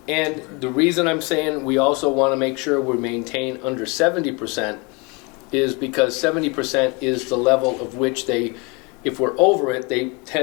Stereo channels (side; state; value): right; quieter; 29.4 dB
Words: And the reason I'm saying we also want to make sure we maintain under 70% is because 70% is the level of which they, if we're over it, they